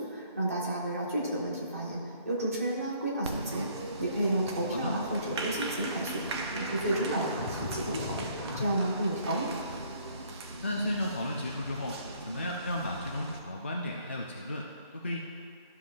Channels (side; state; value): both; inverted; correlation -0.61